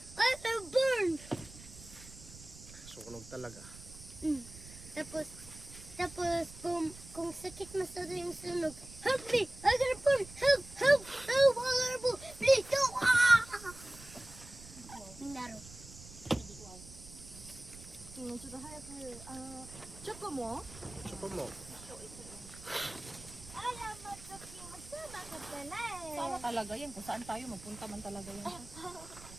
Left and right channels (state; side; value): noise; right; rumble, 17 dB below the sound